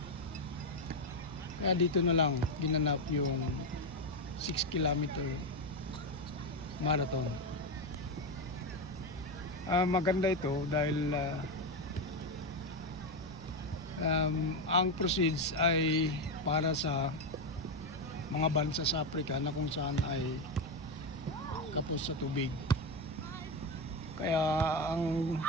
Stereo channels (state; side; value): noise; right; rumble, 19 dB below the sound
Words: Kaya dito na lang ginanap yung 6 kilometer marathon. Maganda ito dahil ang proceeds ay para sa mga bansa sa Africa na kung saan ay kapos sa tubig. Kaya ang